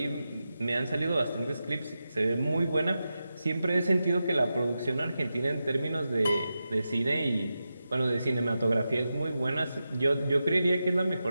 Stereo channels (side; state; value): both; inverted; correlation -0.91